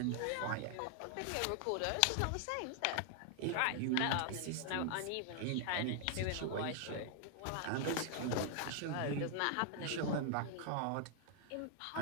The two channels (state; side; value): different; both; correlation 0.00